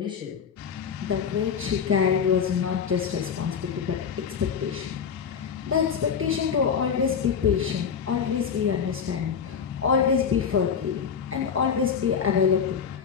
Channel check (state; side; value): quieter; right; 7.0 dB